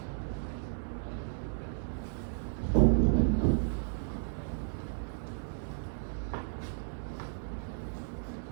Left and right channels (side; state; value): left; silent; 55 dB below the other